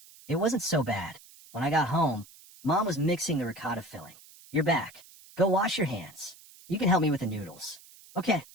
It wasn't so bad. When I got home, Mom was mixing the ricotta filling. "You're back. Go wash your hands. You can help me with the noodles." "Okay,"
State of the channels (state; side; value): noise; right; hiss, 22 dB below the sound